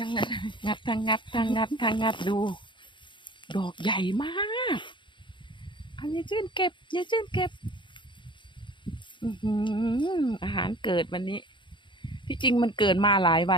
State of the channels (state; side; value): late; right; 0.23 ms